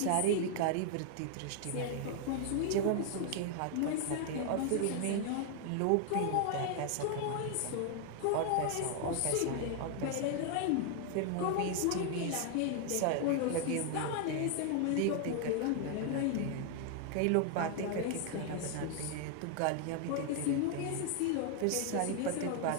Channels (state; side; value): different; both; correlation 0.00